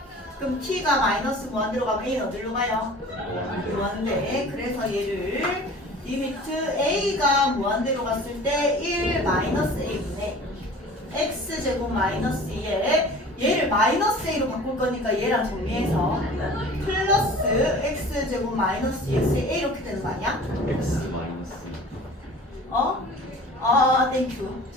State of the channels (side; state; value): both; normal; correlation 0.43